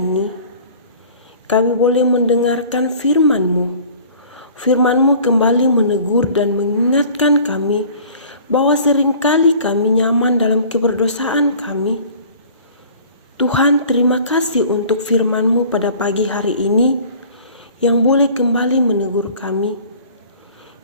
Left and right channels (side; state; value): both; inverted; correlation -0.47